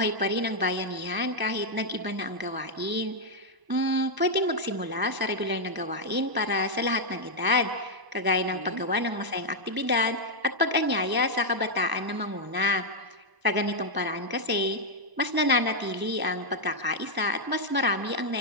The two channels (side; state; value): left; late; 1.0 ms